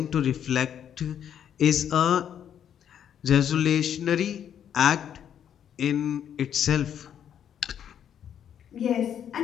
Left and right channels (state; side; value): quieter; right; 9.2 dB